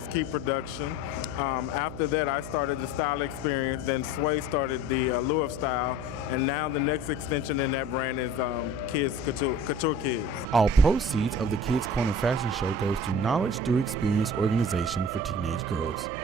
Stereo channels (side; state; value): right; noise; hum, 12 dB below the sound